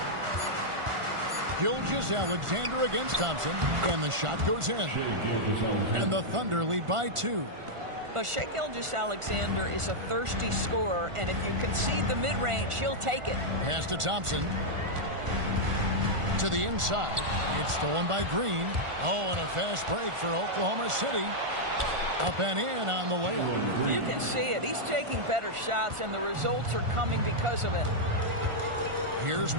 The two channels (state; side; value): late; left; 1.4 ms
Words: Gilgeous-Alexander against Thompson. And the shot goes in. And the Thunder lead by 2. But Shai Gilgeous-Alexander is a thirsty scorer, and if you concede the mid-range, he'll take it. Pass to Thompson. To the inside. It's stolen by Green. Oh, and a fast break for Oklahoma City. Up and in on the layup. You can see it. He's taking better shots, and the results are coming because of it. Here's